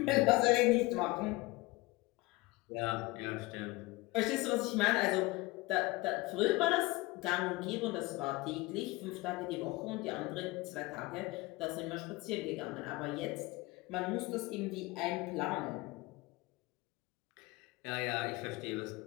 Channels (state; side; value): quieter; right; 21.8 dB